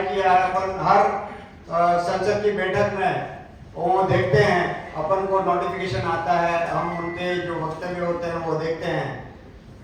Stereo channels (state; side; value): identical; both; correlation 1.00